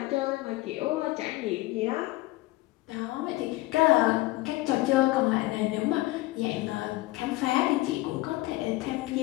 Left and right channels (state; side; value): quieter; right; 19.1 dB